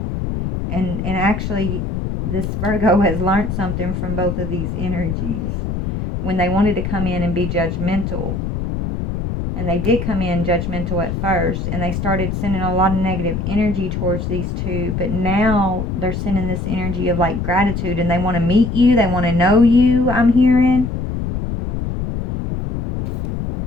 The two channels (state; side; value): noise; left; rumble, 3 dB below the sound